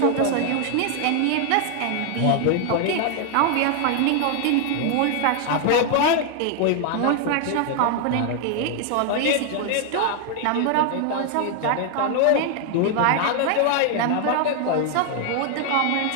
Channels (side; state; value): both; different; correlation 0.00